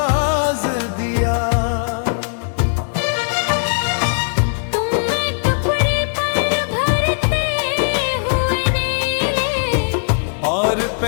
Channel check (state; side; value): silent; right; digital silence